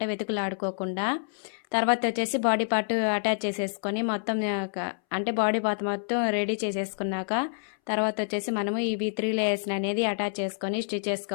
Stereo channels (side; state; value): right; silent; 59 dB below the other